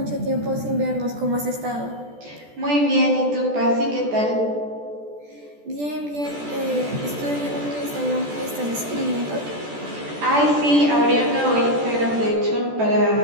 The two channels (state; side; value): late; left; 14 ms